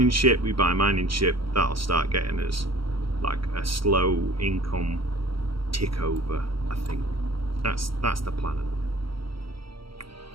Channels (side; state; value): left; late; 0.75 ms